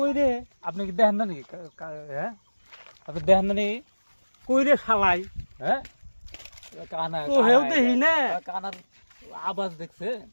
রে আপনি কি দেখেন না নাকি হ্যাঁ আপনি দেখেন না নাকি কই রে শালাই হ্যাঁ কানা তো হেউ দেখি না কানার আওয়াজ দেখছে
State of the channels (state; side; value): inverted; both; correlation -1.00